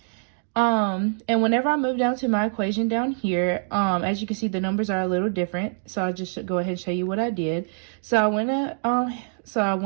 And whenever I move down to my equation down here, as you can see, the numbers are a little different. So I'll just go ahead and show you what I did. So I went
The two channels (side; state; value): left; silent; digital silence